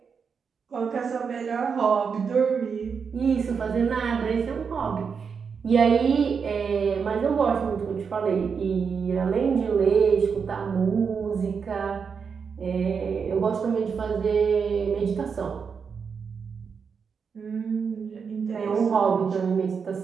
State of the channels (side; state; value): left; quieter; 6.1 dB